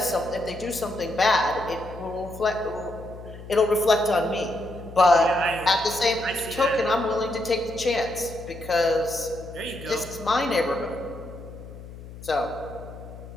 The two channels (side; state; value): left; noise; hum, 15 dB below the sound